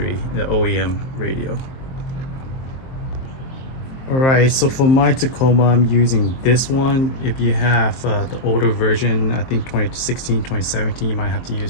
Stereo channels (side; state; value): right; late; 23 ms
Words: the OEM radio. All right, so for my Tacoma, I'm using this one. If you have the older version, I think 2016, 2017, you might have to